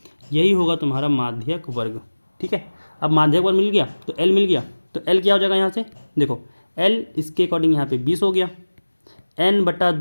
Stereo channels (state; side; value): inverted; both; correlation -1.00